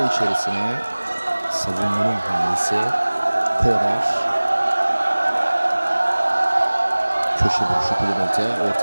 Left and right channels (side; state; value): both; inverted; correlation -1.00